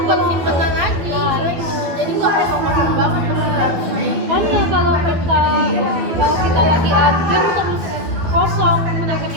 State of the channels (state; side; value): late; left; 12 ms